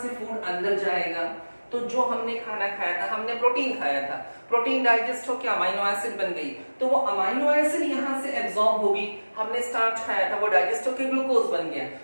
फूड अंदर जाएगा, तो जो हमने खाना खाया था, हमने प्रोटीन खाया था, प्रोटीन डाइजेस्ट होकर अमीनो एसिड बन गई, तो वो अमीनो एसिड यहाँ से एब्जॉर्ब होगी। हमने स्टार्च खाया था, वो डाइजेस्ट होकर ग्लूकोज बन गया,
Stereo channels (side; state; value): both; inverted; correlation -1.00